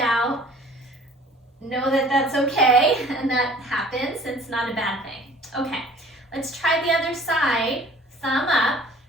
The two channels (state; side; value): normal; both; correlation 0.50